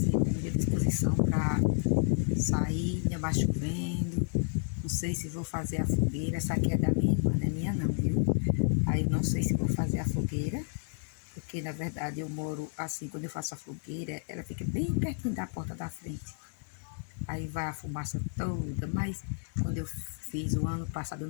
com muita disposição para sair, ainda mais chovendo. Não sei se vou fazer a fogueira. Essa aqui é da minha irmã, não é minha não, viu? Aí não sei se vou fazer a fogueira, porque na verdade eu moro assim, quando eu faço a fogueira, ela fica bem pertinho da porta da frente. Aí vai a fumaça toda, mas quando eu fiz o ano passado, eu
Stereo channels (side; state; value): right; silent; digital silence